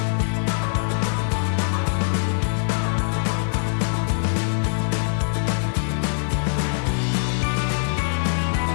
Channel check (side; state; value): right; silent; digital silence